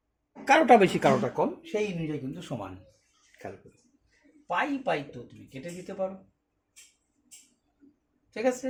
কারোটা বেশি কারোটা কম, সেই অনুযায়ী কিন্তু সমান। খেয়াল করো, পাই তো তুমি কেটে দিতে পারো। ঠিক আছে,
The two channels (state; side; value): identical; both; correlation 1.00